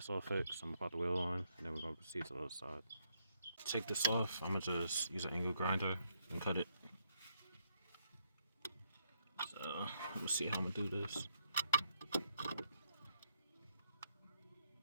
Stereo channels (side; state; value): both; inverted; correlation -0.75